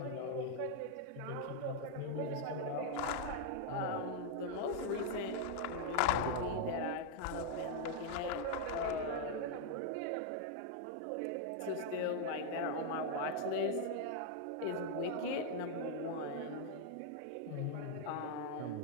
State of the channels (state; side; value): different; both; correlation 0.00